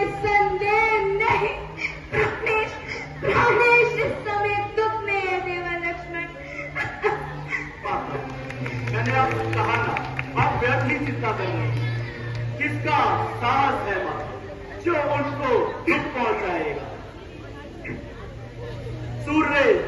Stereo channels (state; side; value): identical; both; correlation 1.00